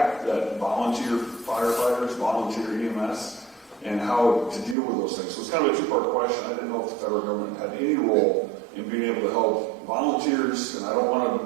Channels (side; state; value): left; drops out; at 4.8 s